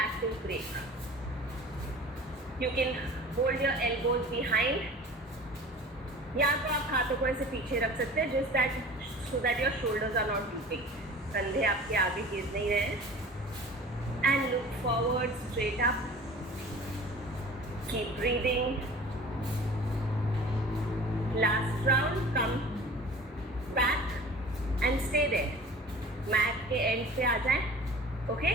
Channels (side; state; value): both; normal; correlation 0.42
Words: active break. You can hold your elbows behind. या तो आप हाथों को ऐसे पीछे रख सकते हैं, just that so that your shoulders are not drooping. कंधे आपके आगे गिर नहीं रहे हैं. And look forward, straight up. Keep breathing. Last round, come back and stay there. Mat के end पे आ जाएं. Okay?